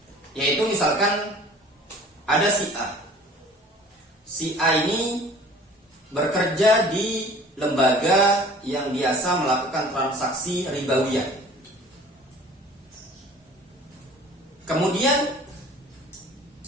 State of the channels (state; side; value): normal; both; correlation 0.47